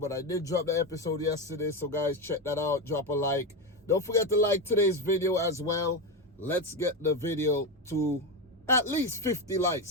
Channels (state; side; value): normal; both; correlation 0.14